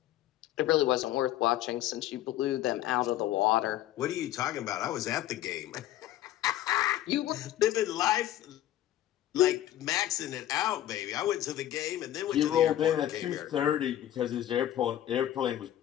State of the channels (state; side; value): quieter; right; 12.9 dB